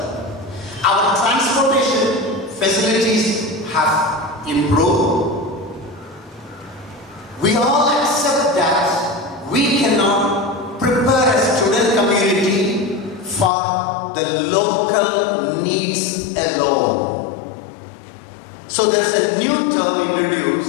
Our transportation facilities have improved. We all accept that we cannot prepare a student community for the local needs alone. So there is a new term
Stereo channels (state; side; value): drops out; right; at 13.5 s